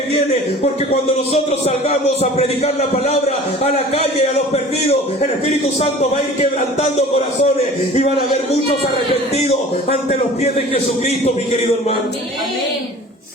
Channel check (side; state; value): both; normal; correlation 0.43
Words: viene. Porque cuando nosotros salgamos a predicar la palabra a la calle, a los perdidos, el Espíritu Santo va a ir quebrantando corazones y van a haber muchos arrepentidos ante los pies de Jesucristo, mi querido hermano. Amén.